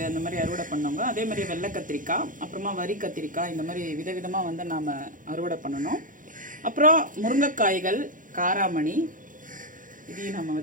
அந்த மாதிரி அறுவடை பண்ணவங்க. அதே மாதிரி வெள்ளை கத்திரிக்காய், அப்புறமா வரி கத்திரிக்காய், இந்த மாதிரி விதவிதமாக வந்து நாம் அறுவடை பண்ணணும். அப்புறம் முருங்கைக்காய்கள், காராமணி, இதையும் நம்ம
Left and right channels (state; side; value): late; left; 0.39 ms